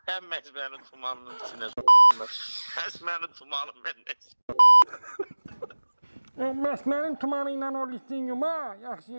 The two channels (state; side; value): inverted; both; correlation -1.00